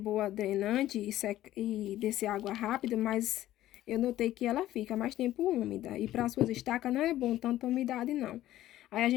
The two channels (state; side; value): quieter; right; 14.1 dB